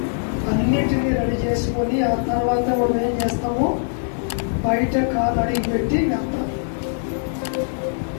అన్నిటినీ రెడీ చేసుకొని ఆ తర్వాత మనం ఏం చేస్తాము? బయట కాలు అడిగి పెట్టి వెళ్తాం.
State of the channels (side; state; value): right; silent; digital silence